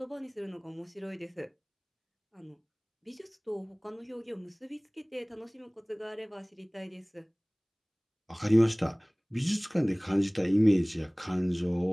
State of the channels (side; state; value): both; identical; correlation 1.00